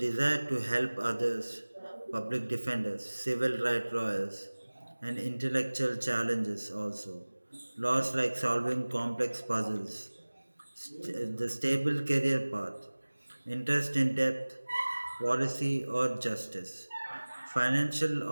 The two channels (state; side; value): inverted; both; correlation -1.00